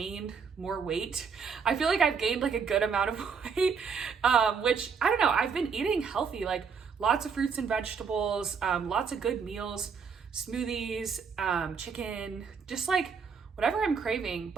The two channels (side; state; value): left; quieter; 5.9 dB